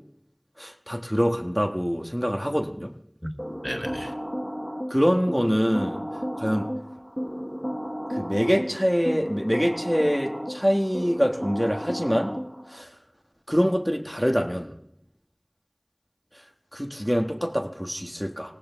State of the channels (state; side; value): identical; both; correlation 1.00